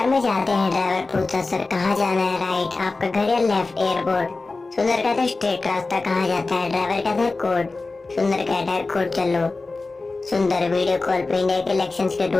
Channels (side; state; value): right; quieter; 3.6 dB